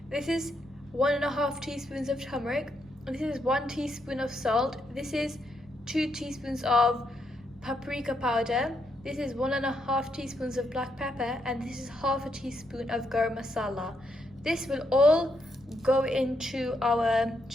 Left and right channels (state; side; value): noise; right; rumble, 26 dB below the sound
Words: This is 1.5 teaspoons of turmeric. This is 1 teaspoon of salt. This is 2 teaspoons of paprika powder. This is 1.5 teaspoons of black pepper, and this is 1/2 teaspoon of garam masala. This will all go into our